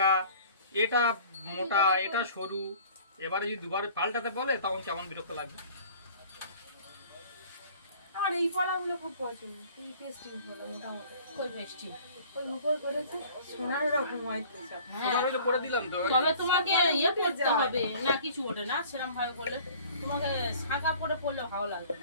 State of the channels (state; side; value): inverted; both; correlation -0.49